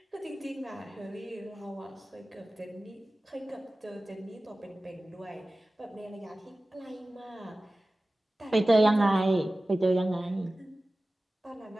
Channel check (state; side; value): normal; both; correlation 0.97